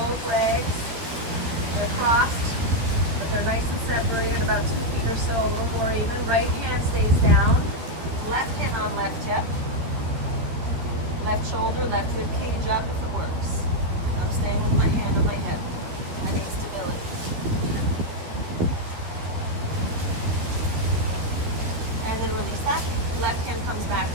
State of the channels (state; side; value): late; left; 13 ms